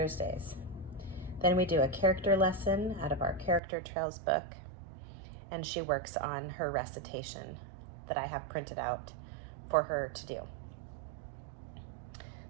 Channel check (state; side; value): drops out; left; at 3.6 s